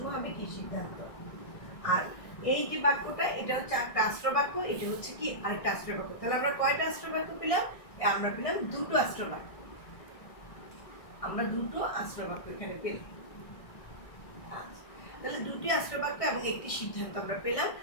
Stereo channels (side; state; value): right; late; 1.6 ms